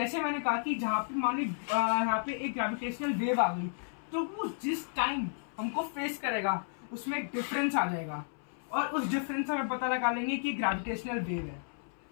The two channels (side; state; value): right; silent; 56 dB below the other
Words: मैंने कहा कि जहाँ पे मान ली यहाँ पे एक ग्रेविटेशनल वेव आ गई, तो वो जिस टाइम हमको फेस करेगा उसमें एक डिफरेंस आ जाएगा, और उस डिफरेंस से हमें पता लगा लेंगे कि ग्रेविटेशनल वेव है।